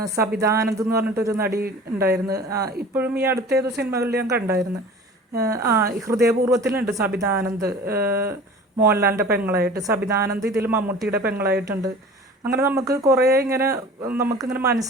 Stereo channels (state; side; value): normal; both; correlation 0.41